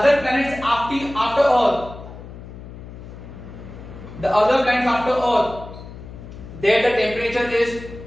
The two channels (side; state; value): left; noise; hum, 14 dB below the sound